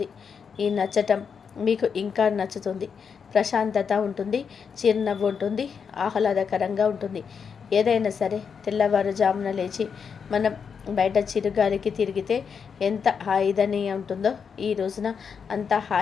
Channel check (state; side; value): quieter; right; 6.4 dB